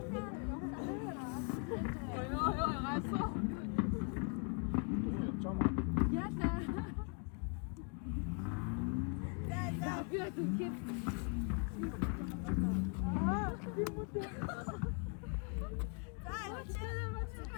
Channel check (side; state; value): right; quieter; 38.8 dB